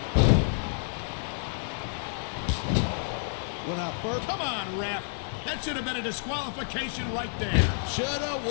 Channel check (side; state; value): right; silent; digital silence